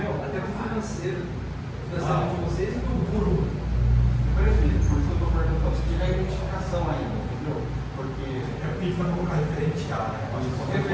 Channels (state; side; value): identical; both; correlation 1.00